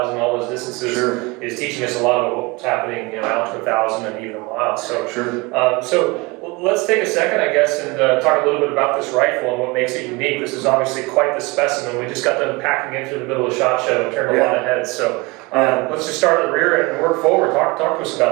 all those distances is teaching us a lot of what's happening out to 1,000 and even a mile. So, so let's take a second, I guess, and talk a little bit about this rifle and what makes it unique. This is obviously quite the specimen. We just got them packing in through the middle of the SHOT Show and turned a lot of heads. So let's just start at the rear and work forward. Talk to us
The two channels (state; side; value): quieter; left; 25.3 dB